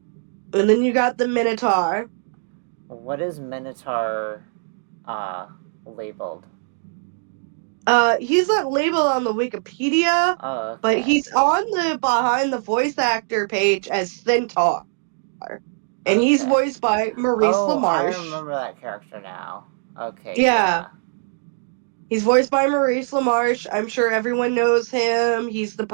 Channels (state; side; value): silent; left; digital silence